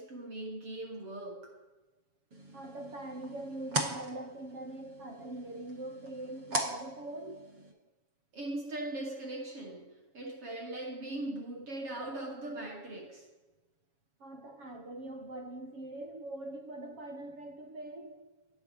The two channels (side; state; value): left; late; 7.2 ms